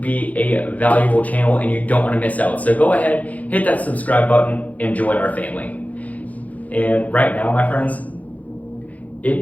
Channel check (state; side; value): late; right; 0.073 ms